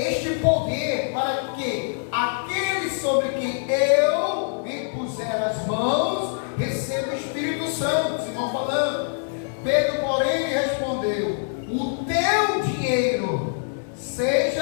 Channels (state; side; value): silent; right; digital silence